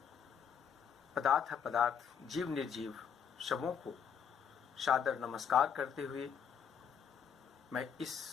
पदार्थ अपदार्थ जीव निर्जीव सबों को सादर नमस्कार करते हुए मैं इस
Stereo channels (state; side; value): quieter; right; 7.3 dB